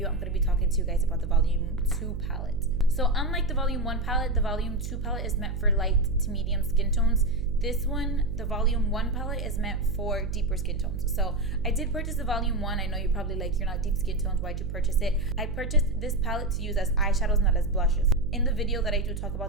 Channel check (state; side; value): noise; right; hum, 5 dB below the sound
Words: I'm going to be talking to you guys about the Volume 2 palette. So, unlike the Volume 1 palette, the Volume 2 palette is meant for light to medium skin tones. This one, the Volume 1 palette, is meant for deeper skin tones. So, I did purchase the Volume 1. I know you're probably like, you're not deep skin tones. Why'd you purchase it? I purchased this palette to use as eyeshadows, not as blushes. In the video that I do talk